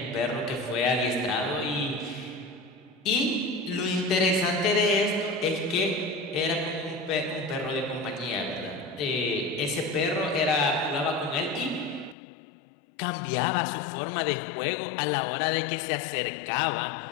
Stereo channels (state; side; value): drops out; right; at 12.2 s